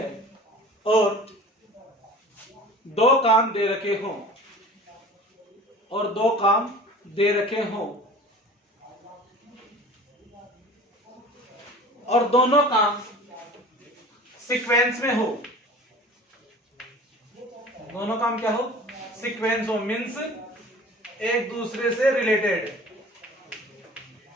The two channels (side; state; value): both; normal; correlation 0.42